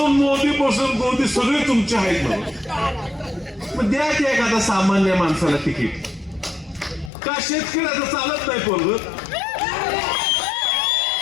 मोदी सगळे तुमचे आहेत ना. मग द्या की एखादा सामान्य माणसाला तिकीट. का शेतकऱ्याचं चालत नाही पोरग?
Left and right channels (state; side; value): drops out; right; at 7.1 s